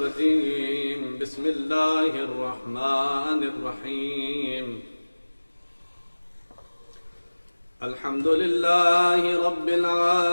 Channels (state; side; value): inverted; both; correlation -1.00